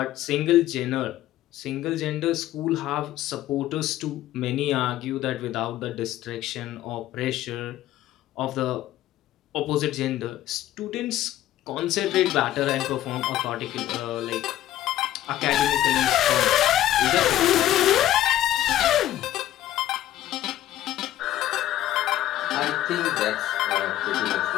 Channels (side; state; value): right; quieter; 13.4 dB